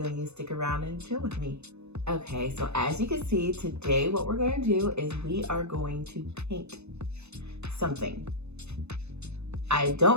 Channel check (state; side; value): late; left; 0.81 ms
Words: and you stick around and chill with me. Okay, so as you can see, today what we're going to do is we are going to paint something. I